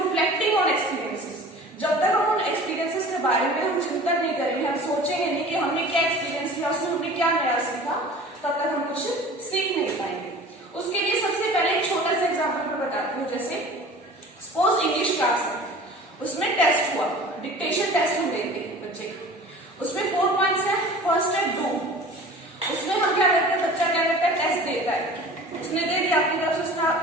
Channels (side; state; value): both; normal; correlation 0.42